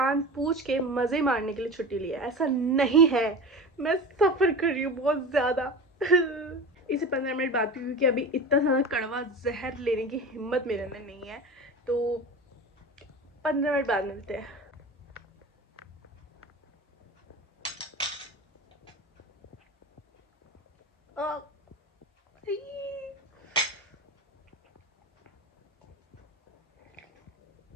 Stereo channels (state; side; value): normal; both; correlation 0.31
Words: पूछ के मज़े मारने के लिए छुट्टी ली है। ऐसा नहीं है, मैं सफ़र कर रही हूँ बहुत ज़्यादा। इसे 15 मिनट बाद पी, क्योंकि अभी इतना ज़्यादा कड़वा जहर लेने की हिम्मत मेरे अंदर नहीं है। तो 15 मिनट बाद मिलते हैं।